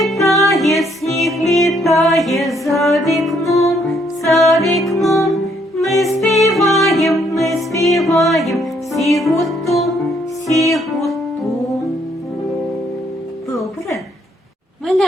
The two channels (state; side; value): normal; both; correlation 0.69